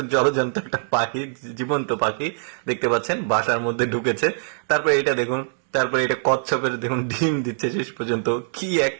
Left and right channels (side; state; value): left; silent; digital silence